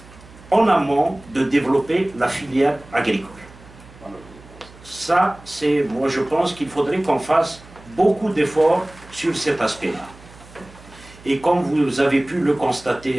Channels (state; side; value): noise; right; hum, 22 dB below the sound